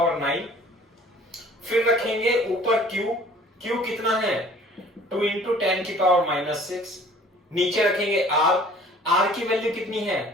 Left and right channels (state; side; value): normal; both; correlation 0.52